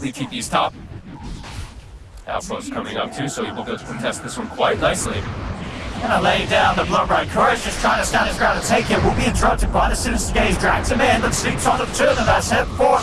TP's top. Outpost coming up too, so he will be able to contest this one quite nicely. Gonna lay down the blood right. Courage just trying to stand his ground and take it. Will be interrupted by the sinister gaze. Drags him in, but sleeps on the two of them. That's head forward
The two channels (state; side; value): identical; both; correlation 1.00